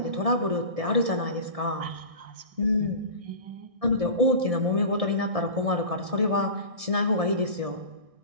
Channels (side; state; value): left; late; 1.6 ms